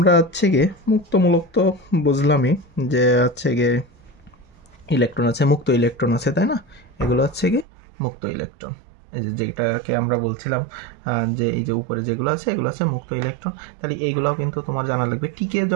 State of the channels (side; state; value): left; drops out; at 7.7 s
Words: হচ্ছে গিয়ে মুক্তমূলক তো বুঝলামই যে হচ্ছে গিয়ে ইলেকট্রন আছে, মুক্ত ইলেকট্রন আছে, তাই না, এগুলো হচ্ছে গিয়ে মুক্ত ইলেকট্রন। এই যেটাকে আমরা বলছিলাম যে এই যে উপরে যেগুলো আছে এগুলো আছে মুক্ত ইলেকট্রন। তাহলে এইগুলোও কিন্তু তোমার জানা লাগবে। টিকে